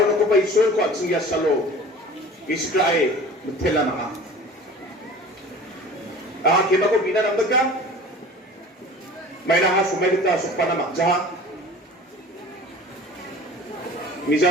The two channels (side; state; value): both; normal; correlation 0.42